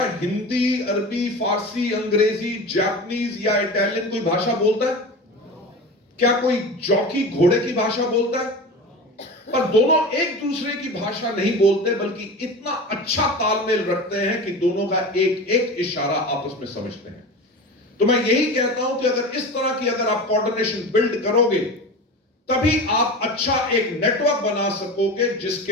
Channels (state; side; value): normal; both; correlation 0.30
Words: हिंदी, अरबी, फारसी, अंग्रेजी, जापानीज या इटालियन कोई भाषा बोलता है? क्या कोई जॉकी घोड़े की भाषा बोलता है? पर दोनों एक दूसरे की भाषा नहीं बोलते, बल्कि इतना अच्छा तालमेल रखते हैं कि दोनों का एक एक इशारा आपस में समझते हैं। तो मैं यही कहता हूं कि अगर इस तरह की अगर आप कोऑर्डिनेशन बिल्ड करोगे, तभी आप अच्छा एक नेटवर्क बना सकोगे